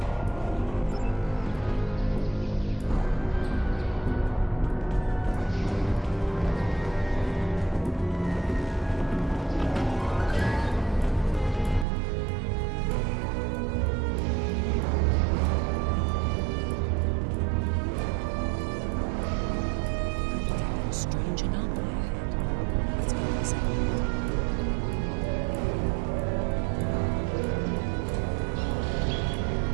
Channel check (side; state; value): left; drops out; at 11.9 s